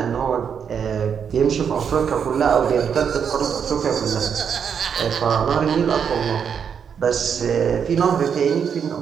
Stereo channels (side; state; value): left; quieter; 7.3 dB